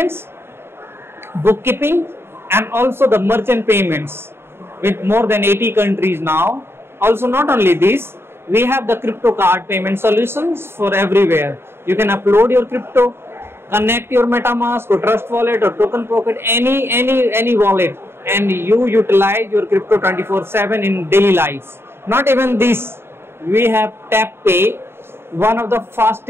bookkeeping, and also the merchant payments, with more than 80 countries now. Also, not only this, we have the crypto card payment solutions for everywhere. You can upload your crypto, connect your MetaMask or Trust Wallet or Token Pocket, any wallet, and you utilize your crypto 24/7 in daily life. Not even this, we have Tap Pay, one of the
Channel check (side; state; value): left; late; 0.11 ms